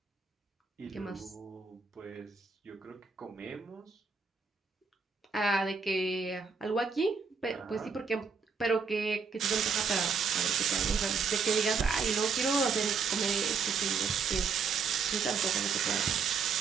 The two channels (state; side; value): quieter; left; 5.4 dB